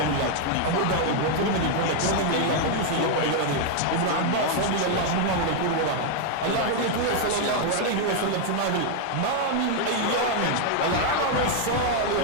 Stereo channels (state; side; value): different; both; correlation 0.00